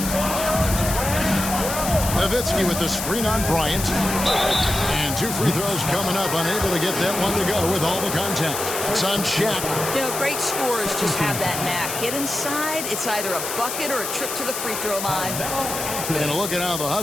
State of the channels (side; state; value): left; noise; hiss, 5 dB below the sound